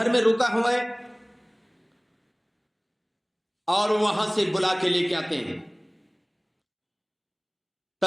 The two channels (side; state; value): both; identical; correlation 1.00